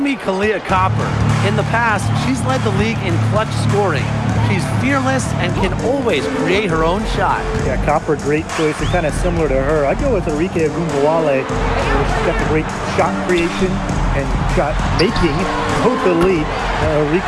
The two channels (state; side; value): identical; both; correlation 1.00